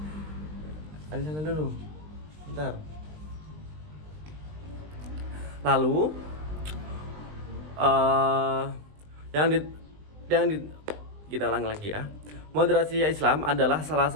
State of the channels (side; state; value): left; late; 20 ms